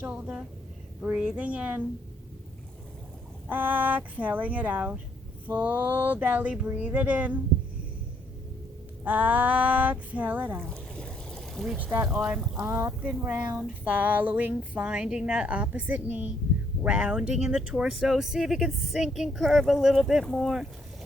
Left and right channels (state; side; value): normal; both; correlation 0.69